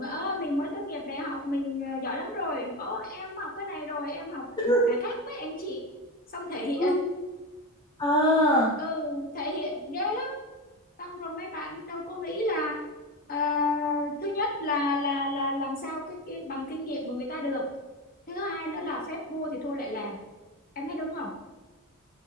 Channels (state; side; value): normal; both; correlation 0.19